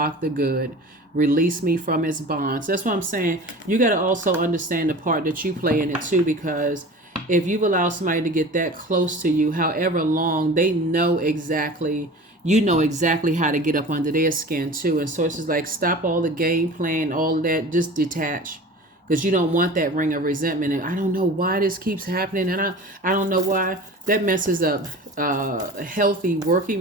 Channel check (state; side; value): normal; both; correlation 0.38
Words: the good. Release me from its bonds. That's what I'm saying. You got to also understand the part that you play in it too, because if you've allowed somebody to get that close to you, however long, they know exactly, how to get up under their skin too. And so it's just like, stop all the game playing, all that, just detach. Because you don't want that ring of resentment. And I don't know why this keeps happening. And I don't know why. That messes up healthy